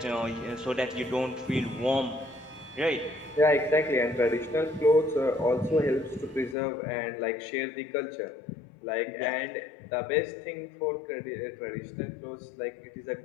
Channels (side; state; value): right; drops out; at 6.6 s